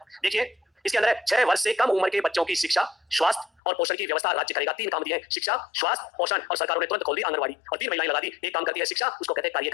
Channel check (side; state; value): right; drops out; at 3.6 s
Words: देखिए, इसके अंदर है 6 वर्ष से कम उम्र के बच्चों की शिक्षा, स्वास्थ्य और पोषण की व्यवस्था राज्य करेगा। 3 काम दिए हैं, शिक्षा, स्वास्थ्य, पोषण, और सरकारों ने तुरंत खोल दी आंगनवाड़ी और 3 महिलाएं लगा दी। एक काम करती है शिक्षा, उसको कहते हैं